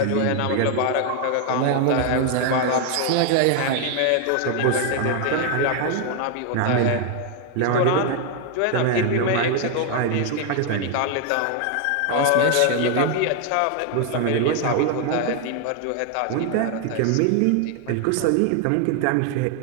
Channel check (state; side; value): different; both; correlation 0.00